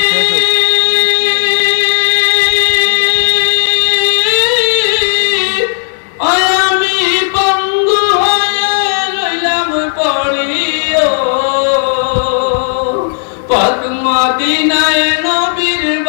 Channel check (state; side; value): silent; right; 67 dB below the other